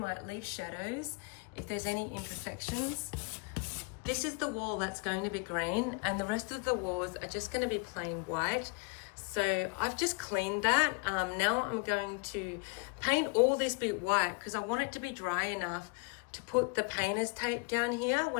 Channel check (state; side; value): quieter; right; 30.3 dB